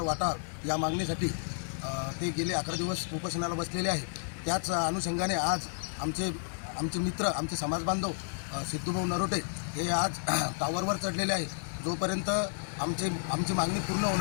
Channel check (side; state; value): right; silent; digital silence